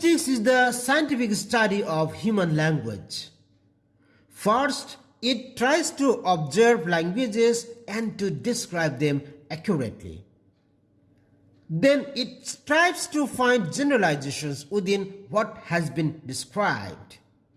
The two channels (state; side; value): identical; both; correlation 1.00